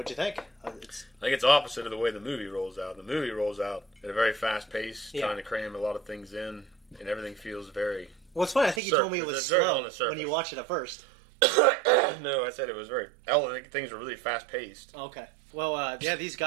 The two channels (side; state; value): left; drops out; at 8.8 s